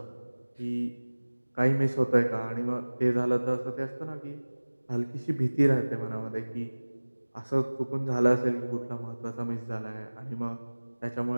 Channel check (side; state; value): both; inverted; correlation -1.00